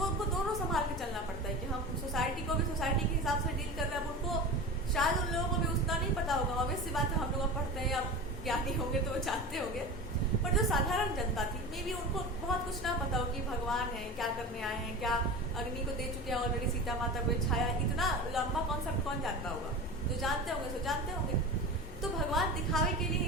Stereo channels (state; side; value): normal; both; correlation 0.30